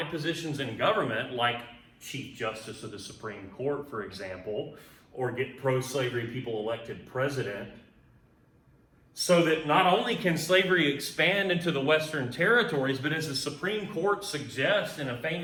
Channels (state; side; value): identical; both; correlation 1.00